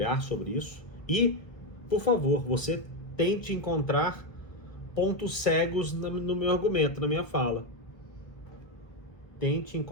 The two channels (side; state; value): right; late; 1.4 ms